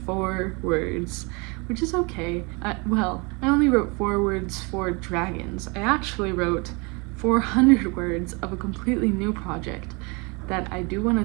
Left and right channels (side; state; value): left; quieter; 29.5 dB